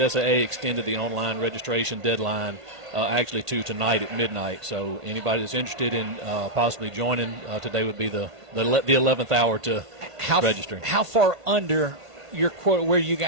extended the online registration deadline actually to tonight at midnight. So anybody that's interested in possibly joining, today would be the 11th hour to register. How far under your quota where you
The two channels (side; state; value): left; late; 1.5 ms